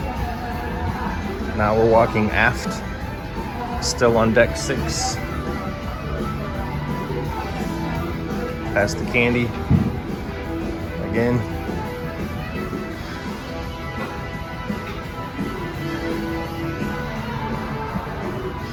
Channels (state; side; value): identical; both; correlation 1.00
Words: Now we're walking aft, still on deck 6. Past the candy again.